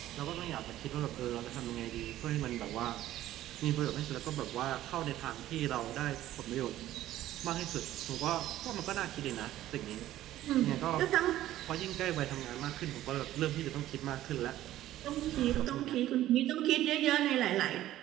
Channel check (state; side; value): quieter; left; 13.9 dB